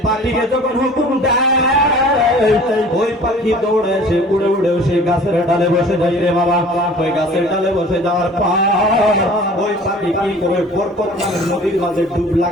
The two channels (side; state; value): both; normal; correlation 0.47